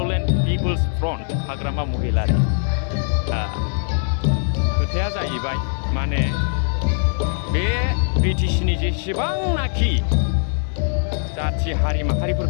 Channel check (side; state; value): right; silent; digital silence